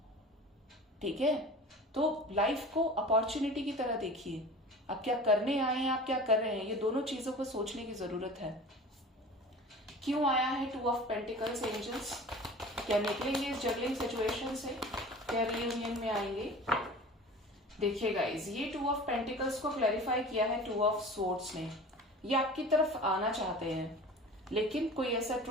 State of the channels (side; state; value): both; normal; correlation 0.39